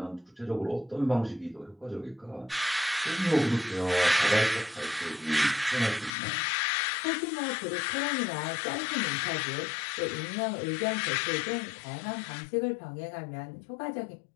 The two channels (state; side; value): drops out; right; at 6.1 s